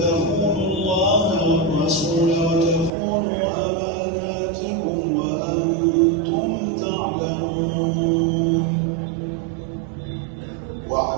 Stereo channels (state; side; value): drops out; left; at 2.9 s